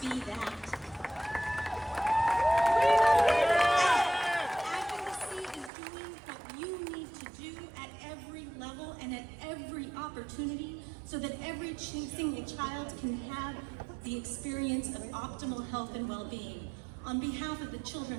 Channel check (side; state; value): left; drops out; at 5.7 s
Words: be that. Advocacy is doing what you need to do at every level and at every opportunity so that every single child can have the experience of optimal health and well-being. On behalf of the children